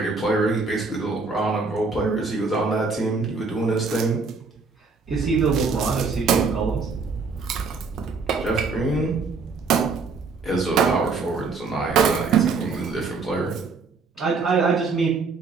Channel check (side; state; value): left; quieter; 4.5 dB